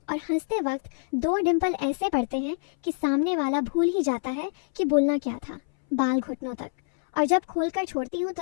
और हंसते वक्त 2 डिंपल ऐसे पड़ते हैं कि सामने वाला भूल ही जाता है कि बोलना क्या था। बाल घुटनों तक, और जब खोलकर छोड़ती हूँ तो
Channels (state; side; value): silent; right; 61 dB below the other